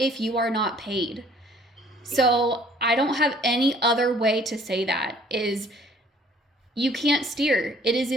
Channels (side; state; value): both; normal; correlation 0.57